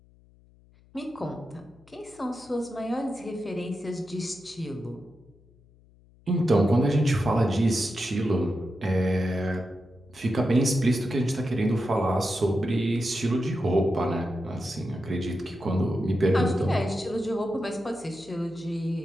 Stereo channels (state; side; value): noise; left; hum, 28 dB below the sound